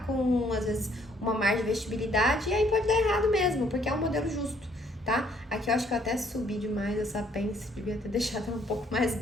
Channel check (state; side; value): normal; both; correlation 0.65